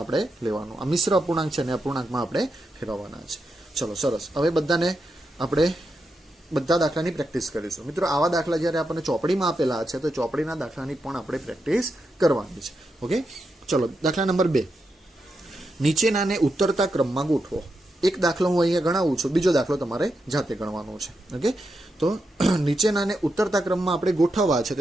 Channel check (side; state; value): both; normal; correlation 0.85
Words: લેવાનો. આ મિશ્ર અપૂર્ણાંક છે ને અપૂર્ણાંકમાં આપણે ફેરવવાના છે. ચલો સરસ. હવે બધાને આપણે બધા દાખલાની પ્રેક્ટિસ કરીશું. મિત્રો આવા દાખલા જ્યારે આપણને ચોપડીમાં આપેલા છે તો ચોપડીના દાખલાની પણ આપણે પ્રેક્ટિસ કરવાની છે. ઓકે, ચલો દાખલા નંબર 2. નીચેનાને ઉતરતા ક્રમમાં ગોઠવો. એક દાખલો હું અહીંયા ગણાવું છું, બીજો દાખલો તમારે જાતે ગણવાનો છે. ઓકે, તો નીચેનાને ઉતરતા ક્રમમાં આપણે ગોઠવવા છે તો